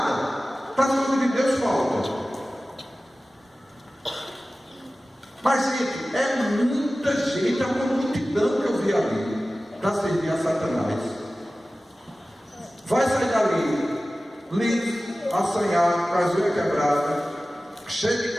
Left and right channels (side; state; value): both; normal; correlation 0.96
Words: Para as coisas de Deus falta. Mas, gente, é muita gente, é uma multidão que eu vi ali para servir a Satanás. Vai sair dali, liso, assanhado, com as unhas quebradas, cheio de